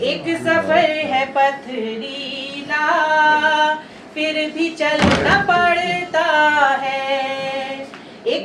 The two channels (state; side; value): identical; both; correlation 1.00